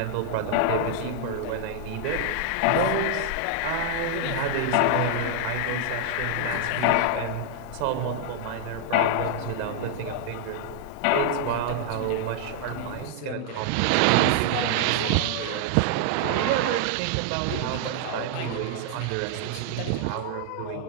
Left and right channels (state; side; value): different; both; correlation 0.00